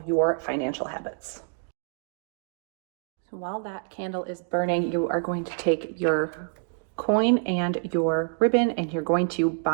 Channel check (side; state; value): left; silent; digital silence